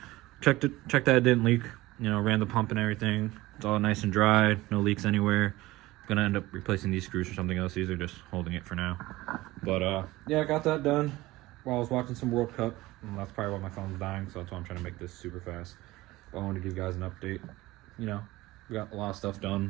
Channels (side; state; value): left; quieter; 18.7 dB